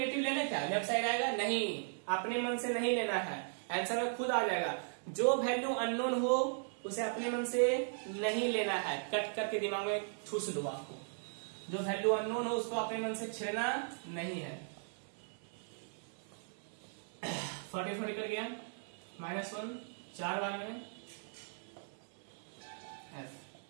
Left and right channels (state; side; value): silent; left; 53 dB below the other